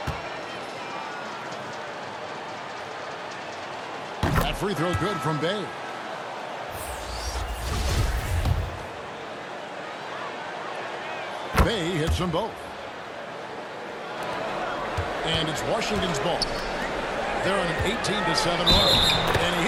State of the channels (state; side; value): identical; both; correlation 1.00